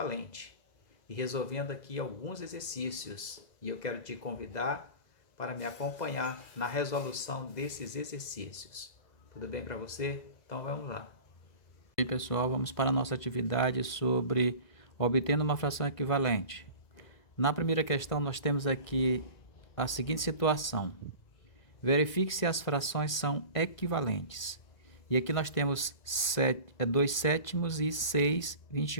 e resolvendo aqui alguns exercícios. E eu quero te convidar para me acompanhar na resolução desses exercícios. Tudo bem para você? Então vamos lá. E aí, pessoal, vamos para a nossa atividade sobre obtendo uma fração equivalente. Na primeira questão, nós temos aqui a seguinte situação. Verifique se as frações são equivalentes. E aqui nós temos 2 sétimos e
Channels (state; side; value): late; right; 2.0 ms